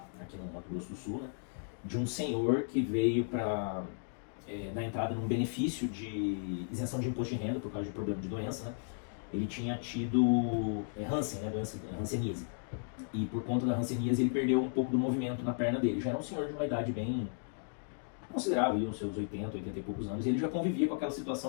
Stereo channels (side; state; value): right; silent; digital silence